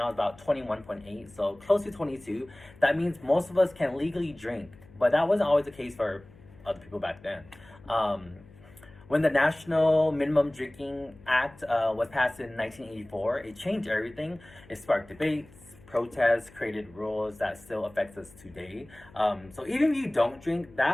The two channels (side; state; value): left; noise; hum, 23 dB below the sound